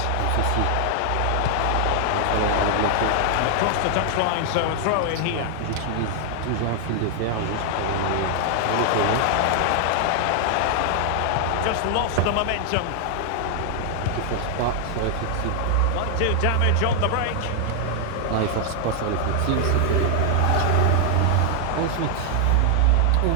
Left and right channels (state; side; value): different; both; correlation 0.00